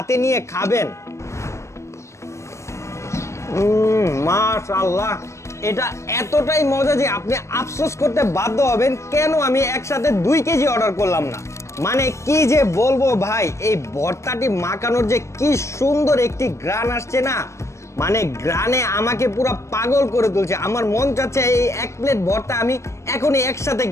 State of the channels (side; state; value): right; late; 0.14 ms